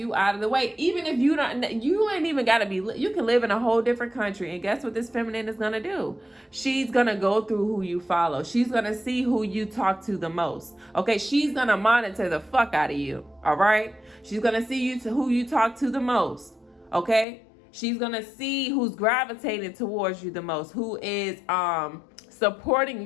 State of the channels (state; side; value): drops out; right; at 17.2 s